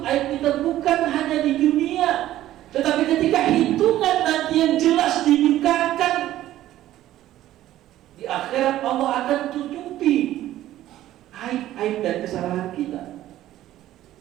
aib aib kita bukan hanya di dunia, tetapi ketika hitungan nanti yang jelas dibukakan di akhirat, Allah akan tutupi aib-aib dan kesalahan kita.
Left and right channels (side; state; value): left; quieter; 13.8 dB